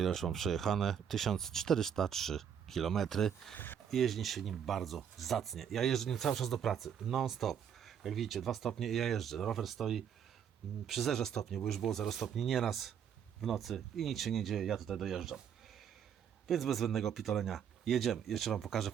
ile już mam przejechane. 1403 km. Jeździ się nim bardzo zacnie. Ja jeżdżę nim cały czas do pracy. Non stop. Jak widzicie, 2 stopnie i ja jeżdżę. Rower stoi przy 0 stopni, bo już było 0 stopni nieraz w nocy i nic się nie dzieje, ja tutaj dojeżdżam. Więc bez zbędnego pitolenia jedziemy. Jeszcze Wam pokażę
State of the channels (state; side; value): quieter; left; 8.3 dB